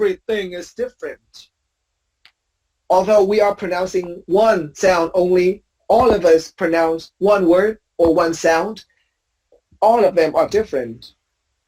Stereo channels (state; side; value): identical; both; correlation 1.00